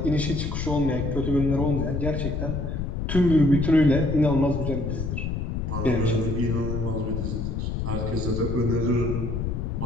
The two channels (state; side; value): noise; left; rumble, 2 dB below the sound